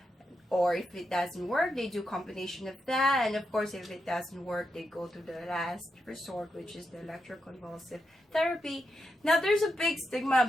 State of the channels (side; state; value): both; normal; correlation 0.85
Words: Or if it doesn't work, they do combination of that. And of course, if it doesn't work, they go to the last resort, which is the electroconvulsive therapy. Now, there's a big stigma